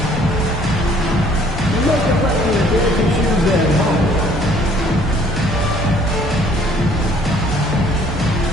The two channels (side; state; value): both; normal; correlation 0.59